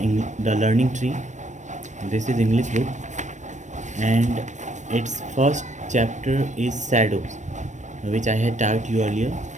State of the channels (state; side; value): late; left; 0.35 ms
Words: Learning Tree. This is English book, and its first chapter is Shadows, which I had taught you earlier.